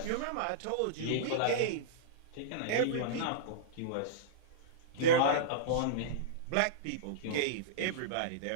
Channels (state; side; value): different; both; correlation -0.04